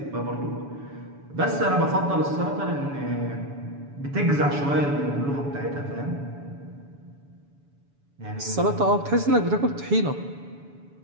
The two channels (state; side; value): late; left; 7.0 ms